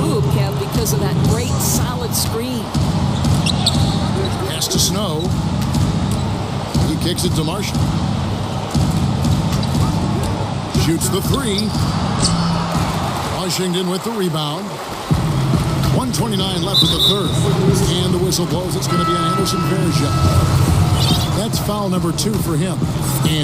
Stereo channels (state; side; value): identical; both; correlation 1.00